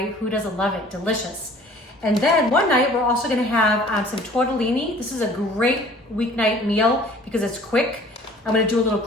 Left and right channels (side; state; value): both; normal; correlation 0.51